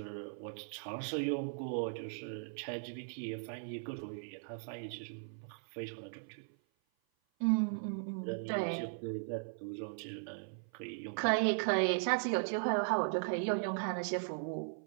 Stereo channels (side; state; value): left; silent; 52 dB below the other